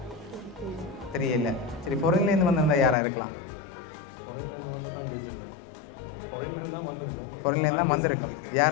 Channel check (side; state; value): right; drops out; at 3.0 s